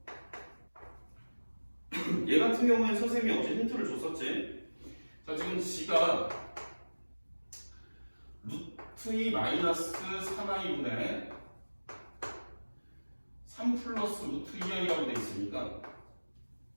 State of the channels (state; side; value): inverted; both; correlation -1.00